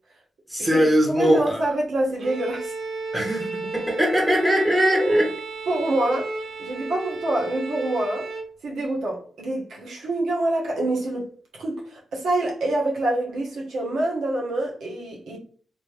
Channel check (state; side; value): normal; both; correlation 0.88